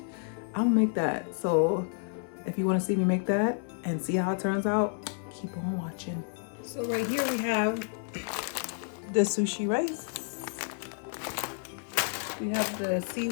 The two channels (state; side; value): silent; right; 58 dB below the other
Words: I'm gonna make that. So if you want to see me make that and see how it turns out, keep on watching. So right here we have the sushi rice. We have the